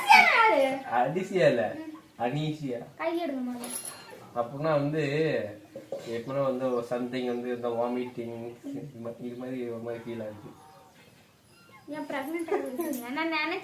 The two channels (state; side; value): identical; both; correlation 1.00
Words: யாரு? அன்சியா இல்ல. அன்ஈசியா. கை எடுங்க முதல்ல. அப்படின்னா வந்து எப்படின்னா வந்து சம்திங் வந்து இந்த வாமிட்டிங் இது மாதிரி ஒரு மாதிரி ஃபீல் ஆகுது. ஏன் பிரெக்னென்ட் ஆகுறீங்க? நான்